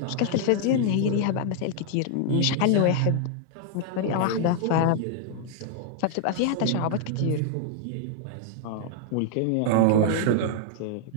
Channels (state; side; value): different; both; correlation 0.00